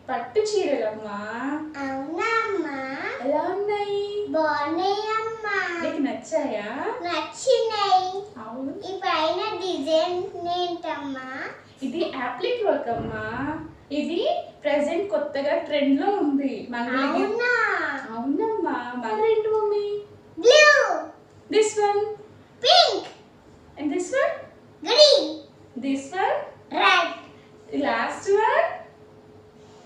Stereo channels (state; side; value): identical; both; correlation 1.00